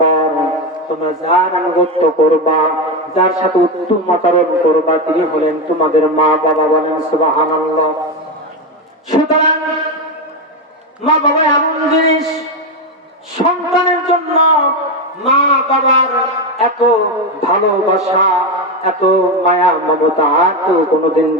তোমরা যার আনুগত্য করবা, যার সাথে উত্তম আচরণ করবা, তিনি হলেন তোমাদের মা বাবা। বলেন সুবহানাল্লাহ। সুতরাং মা বাবা এমন জিনিস, সন্তানের জন্য মা বাবার এত ভালোবাসা, এত মায়া মমতা কেউ কোনোদিন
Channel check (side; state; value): both; normal; correlation 0.12